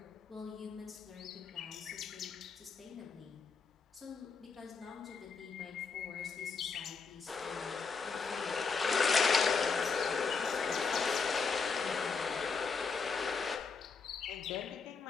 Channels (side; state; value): right; quieter; 5.1 dB